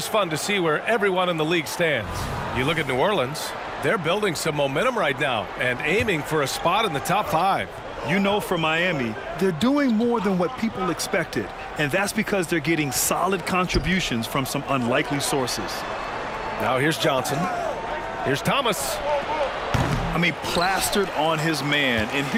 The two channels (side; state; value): both; identical; correlation 1.00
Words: fun to see where everyone in the league stands. You look at New Orleans, they're building some momentum right now and aiming for a spot in the top 5. You know, for Miami, they're doing more than what people expected. And that's because they're getting solid contributions from some unlikely sources. Now here's Johnson. Here's Thomas. I mean, plastered on his man, and